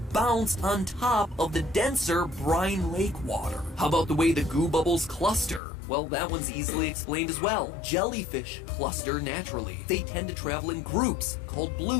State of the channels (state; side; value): drops out; right; at 5.6 s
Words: on top of the denser brine lake water. How about the way the goo bubbles cluster? Well, that one's easily explained as well. Jellyfish cluster naturally. They tend to travel in groups called